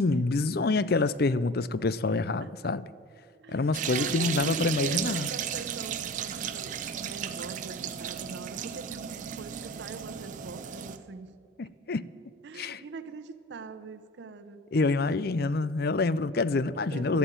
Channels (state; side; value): normal; both; correlation 0.38